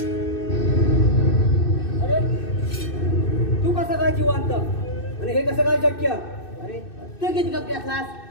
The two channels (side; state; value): right; late; 2.6 ms